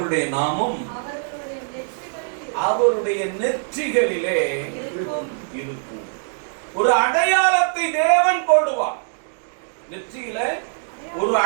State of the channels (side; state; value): left; silent; digital silence